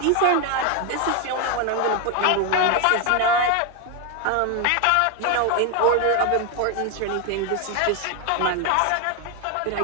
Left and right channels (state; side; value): different; both; correlation 0.01